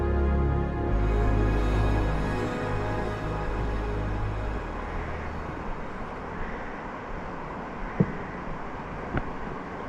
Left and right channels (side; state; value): both; identical; correlation 1.00